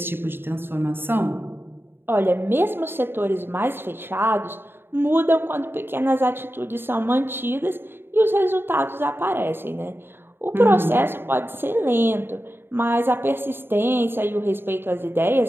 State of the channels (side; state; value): left; late; 0.11 ms